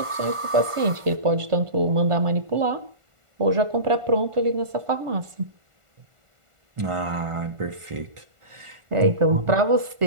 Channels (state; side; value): late; left; 1.4 ms